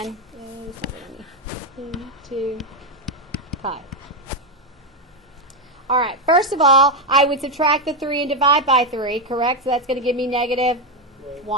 2 pi. All right, first of all, I would subtract the 3 and divide by 3, correct? So that's going to give me negative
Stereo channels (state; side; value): normal; both; correlation 0.06